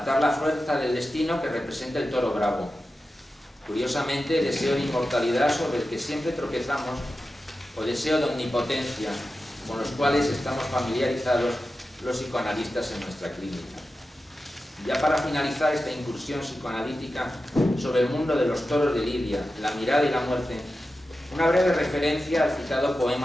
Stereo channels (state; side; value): normal; both; correlation 0.92